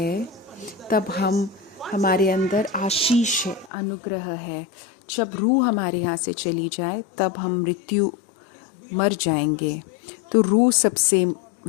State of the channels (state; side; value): drops out; right; at 3.7 s